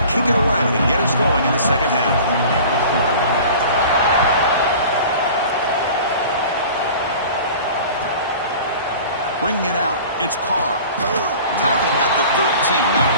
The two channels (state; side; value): inverted; both; correlation -0.42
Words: kick it away to get us going in the second half. Bringing it out, it's Carr. Tackle at the 13. Not